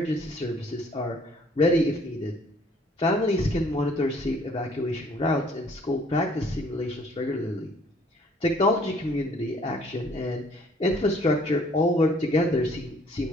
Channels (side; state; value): both; normal; correlation 0.59